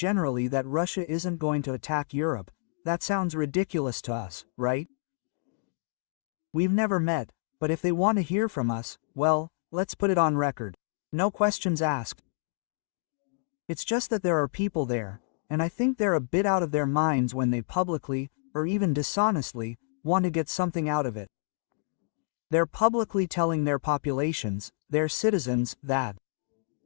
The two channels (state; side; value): silent; right; digital silence